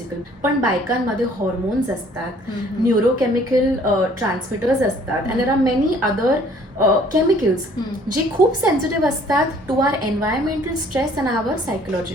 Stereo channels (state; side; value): normal; both; correlation 0.57